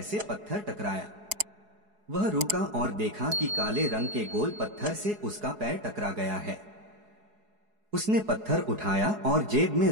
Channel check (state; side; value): late; left; 4.7 ms